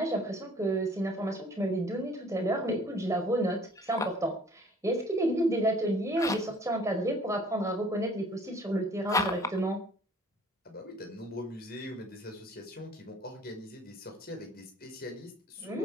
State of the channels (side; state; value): both; normal; correlation 0.53